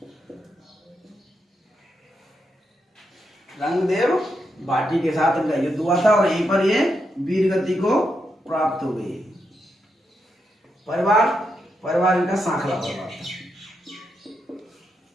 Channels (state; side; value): normal; both; correlation 0.83